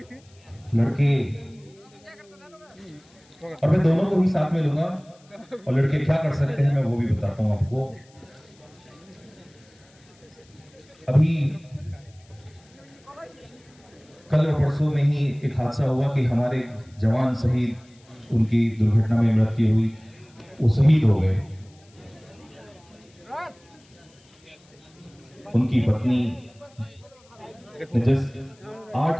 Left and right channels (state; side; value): noise; left; hiss, 30 dB below the sound